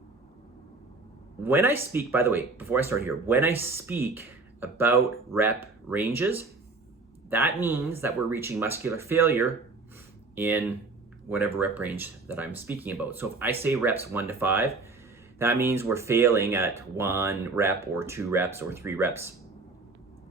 When I speak, by the way, before I start here, when I speak about rep ranges, that means that we're reaching muscular failure in whatever rep range that I'm speaking about. So if I say reps 1 to 5, that means we're failing at 1 rep or 2 reps or 3 reps.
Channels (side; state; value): left; quieter; 3.7 dB